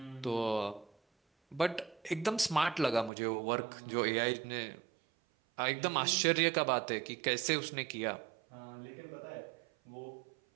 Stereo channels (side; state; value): left; drops out; at 3.1 s